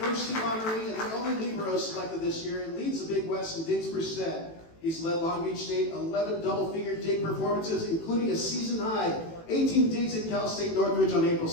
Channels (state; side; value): late; right; 18 ms